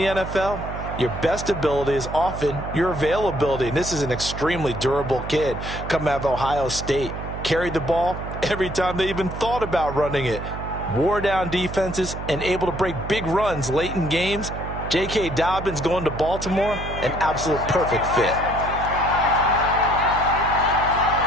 NFL? Your best ability is often your availability, and this is an extremely durable kid coming out of Ohio State. Carried the ball every time they even thought about running it. Wore down defenses and able to break big runs late in games. J.K. Dobbins going to Baltimore, an absolute perfect fit.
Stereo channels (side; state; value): right; noise; hum, 8 dB below the sound